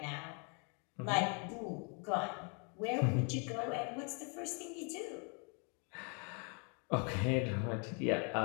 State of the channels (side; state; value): right; quieter; 36.7 dB